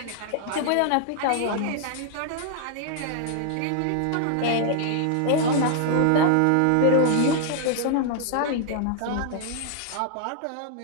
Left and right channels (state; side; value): different; both; correlation 0.00